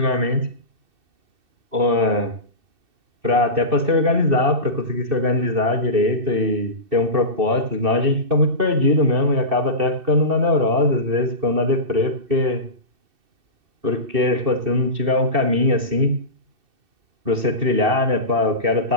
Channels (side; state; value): left; late; 2.6 ms